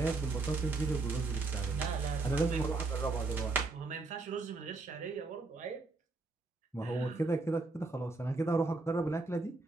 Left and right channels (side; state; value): left; quieter; 3.4 dB